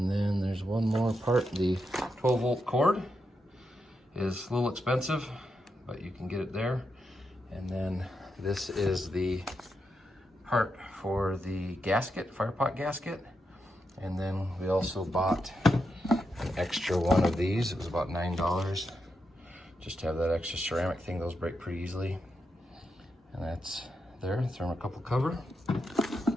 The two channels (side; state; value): both; normal; correlation 0.85